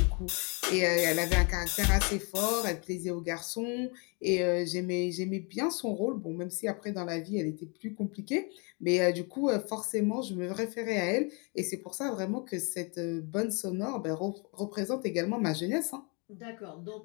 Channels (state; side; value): quieter; right; 33.0 dB